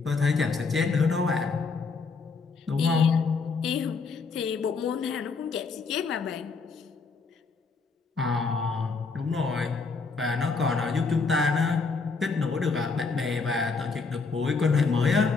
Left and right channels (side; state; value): right; quieter; 4.5 dB